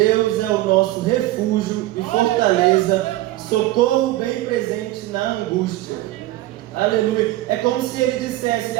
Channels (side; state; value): left; quieter; 16.5 dB